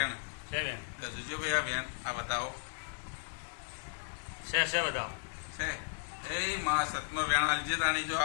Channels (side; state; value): right; silent; 54 dB below the other